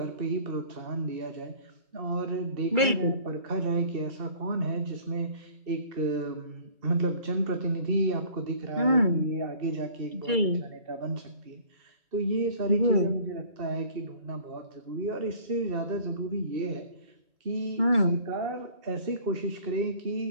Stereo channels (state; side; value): late; left; 2.3 ms